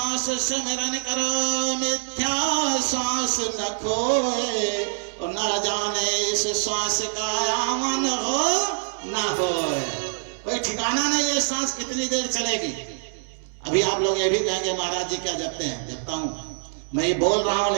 सिमरन करो, मिथ्या सांस न खोए, और न जाने इस सांस का आवन हो ना हो। कोई ठिकाना नहीं है सांस कितनी देर चलेगी। अभी आप लोग ये भी कहेंगे महाराज जी क्या जपते हैं? जपता हूं, मैं ये बोल रहा हूं,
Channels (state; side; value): silent; left; 62 dB below the other